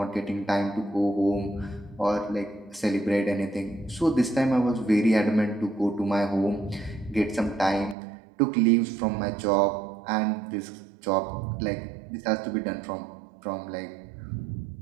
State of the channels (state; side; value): drops out; left; at 8.0 s